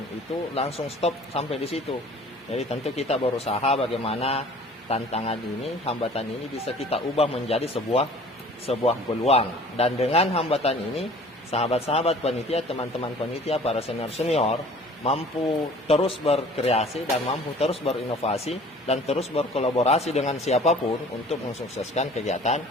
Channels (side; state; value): both; normal; correlation 0.48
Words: itu langsung stop sampai di situ. Jadi tentu kita berusaha bagaimana tantangan ini, hambatan ini bisa kita ubah menjadi sebuah peluang. Dan dengan hambatan ini, sahabat-sahabat panitia, teman-teman panitia, para senior-senior mampu terus berkreasi dan mampu terus berinovasi dan terus berkolaborasi dengan siapapun untuk mensukseskan kegiatan